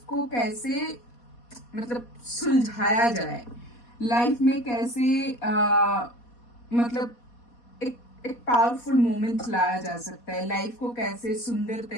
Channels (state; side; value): late; right; 4.2 ms